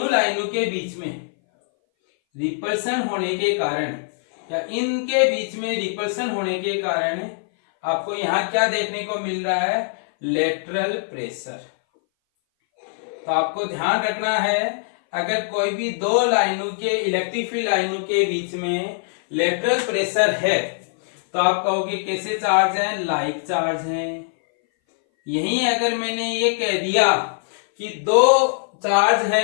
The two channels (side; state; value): right; silent; 60 dB below the other